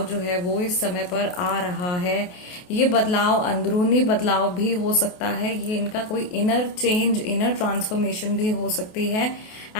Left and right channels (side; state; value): right; late; 28 ms